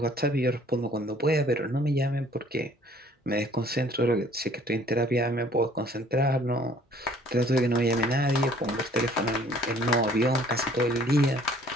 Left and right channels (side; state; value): both; normal; correlation 0.57